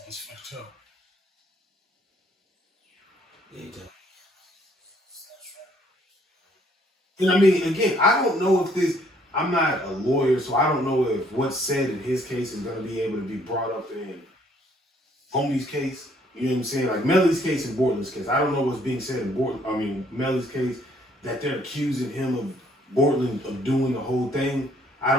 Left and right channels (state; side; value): normal; both; correlation 0.64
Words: That's fucked up. Yeah, And I mean, again, I don't know if I'm not a lawyer, so I don't know if what's said in his case is going to be able to be brought up in homie's case. You know what I'm saying? Like Melly's case and Bortland's case. I don't know what's being said in Melly's case, that they're accusing him of Bortland of doing the whole thing. I